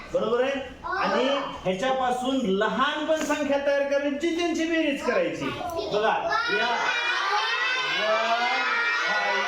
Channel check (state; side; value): identical; both; correlation 1.00